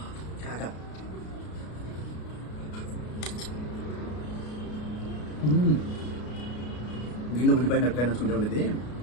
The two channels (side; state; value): right; late; 33 ms